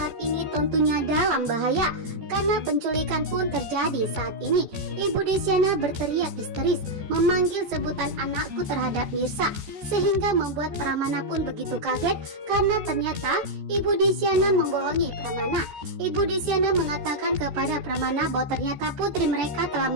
ini tentunya dalam bahaya karena penculikan pun terjadi saat ini. Ibu Desyana berteriak histeris memanggil sebutan anakku terhadap Mirsa sehingga membuat Pramana pun begitu kaget karena ternyata Ibu Desyana membohongi Pramana. Ibu Desyana mengatakan kepada Pramana bahwa ternyata putri mereka telah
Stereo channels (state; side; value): late; left; 14 ms